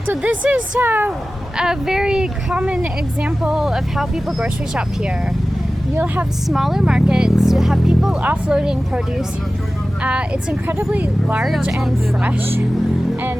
So this is a very common example of how people grocery shop here. You'll have smaller markets, you'll have people offloading produce. It's incredibly large and fresh,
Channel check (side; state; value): both; normal; correlation 0.96